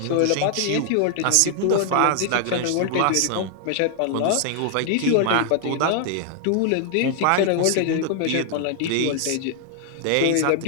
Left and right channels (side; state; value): both; different; correlation 0.00